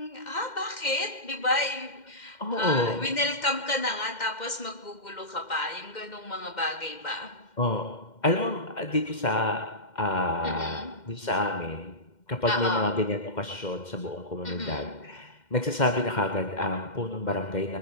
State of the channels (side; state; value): right; late; 2.1 ms